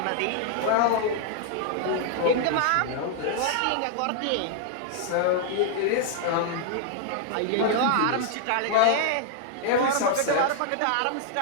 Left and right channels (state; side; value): different; both; correlation 0.00